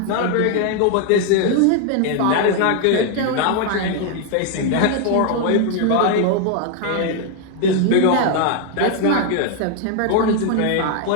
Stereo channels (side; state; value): both; different; correlation 0.00